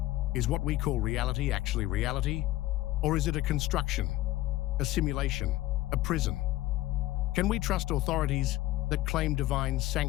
Is what we call reality actually reality? Or is it a construction, a simulation, a prison? Can we trust authorities that claim divine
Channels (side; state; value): right; quieter; 16.4 dB